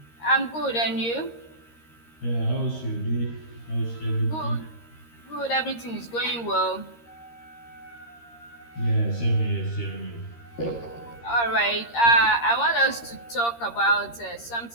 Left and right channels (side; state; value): right; late; 13 ms